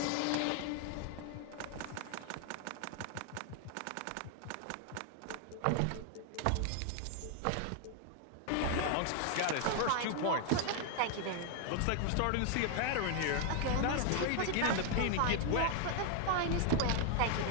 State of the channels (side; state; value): both; different; correlation 0.00